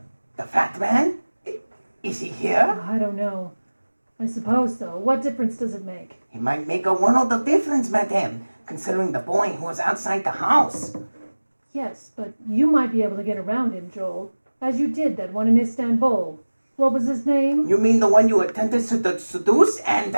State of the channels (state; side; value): inverted; both; correlation -1.00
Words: The fat man? Is he here? I don't know. I suppose so. What difference does it make? He might make a world of difference, madame, considering the boy who was outside the house. Yes, but you might be able to get around him, Joel, as you did that one in Istanbul. What was his name? You mean the one you attempted to seduce and,